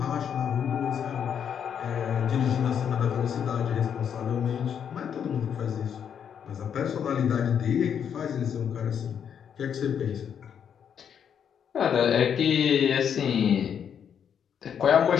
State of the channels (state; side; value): quieter; right; 8.1 dB